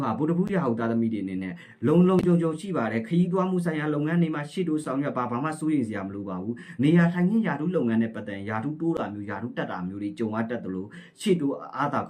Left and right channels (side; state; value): both; identical; correlation 1.00